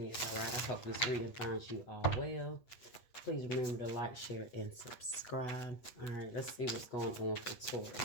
all right? I hope this reading finds you all well. Please remember to like, share, and subscribe. All right, let's see what's going on for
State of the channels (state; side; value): late; right; 8.2 ms